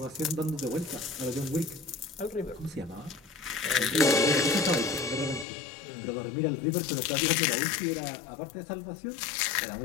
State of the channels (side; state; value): right; drops out; at 5.5 s